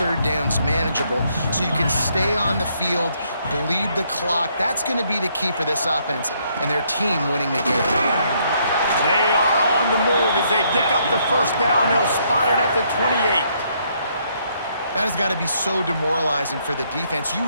downs manageable so you can stay on the field, bleed the clock. That's going to be the key for this offense and their team winning the game. They are on the move as they pick up the 1st down. They'll spot it at the 28. That has got to be so demoralizing for the defense. You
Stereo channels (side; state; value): both; inverted; correlation -0.71